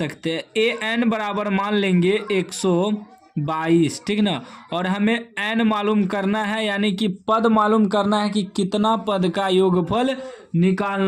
हैं। an बराबर मान लेंगे 122, ठीक ना। और हमें n मालूम करना है, यानी कि पद मालूम करना है कि कितना पद का योगफल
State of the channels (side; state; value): both; identical; correlation 1.00